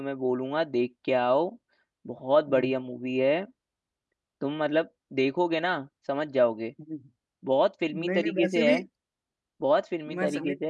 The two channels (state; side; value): identical; both; correlation 1.00